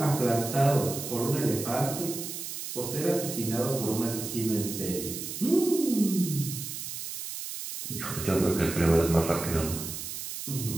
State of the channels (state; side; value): noise; right; hiss, 7 dB below the sound